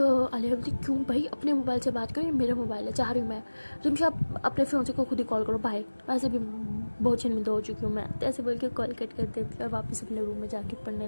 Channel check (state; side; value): inverted; both; correlation -1.00